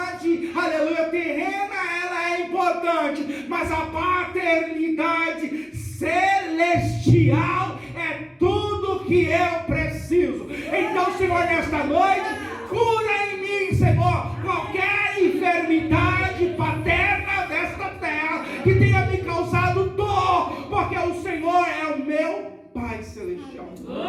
aleluia, terrena, ela é importante, mas a paternidade celestial é tudo que eu preciso. Então, Senhor, nesta noite, cura em mim, Senhor, qualquer enfermidade paterna desta terra que tenha me causado dor, porque o Senhor é o meu Pai Celestial.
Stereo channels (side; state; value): both; identical; correlation 1.00